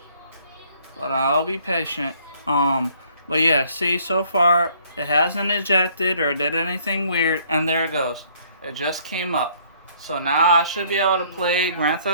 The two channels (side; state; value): both; inverted; correlation -0.61